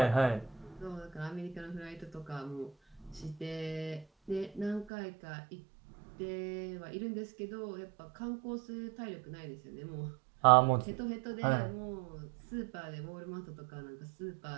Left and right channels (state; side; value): drops out; left; at 4.9 s